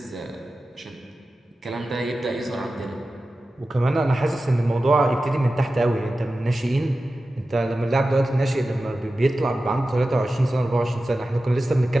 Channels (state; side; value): normal; both; correlation 0.94